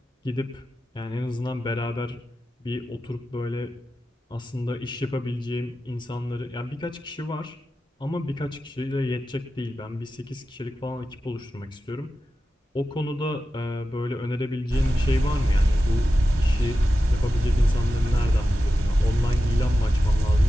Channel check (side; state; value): both; normal; correlation 0.92